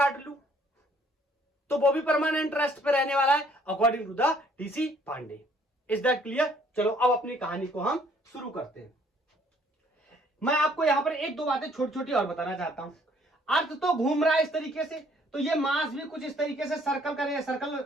लूं, तो वो भी परमानेंट रेस्ट पे रहने वाला है according to the DC Pandey. Is that clear. चलो अब अपनी कहानी को हम शुरू करते हैं। मैं आपको यहां पर एक दो बातें छोटी छोटी और बताना चाहता हूं। अर्थ तो घूम रहा है इस तरीके से, तो ये मास भी कुछ इस तरीके से सर्कल करेगा,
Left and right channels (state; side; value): normal; both; correlation 0.62